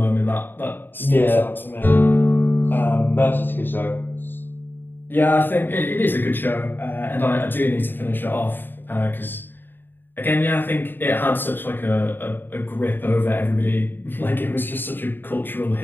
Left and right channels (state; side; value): late; right; 0.095 ms